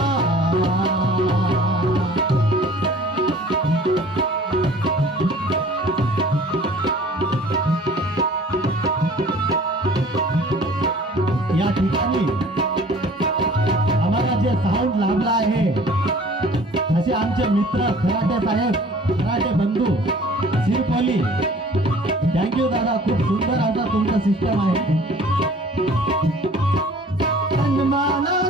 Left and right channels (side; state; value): both; normal; correlation 0.49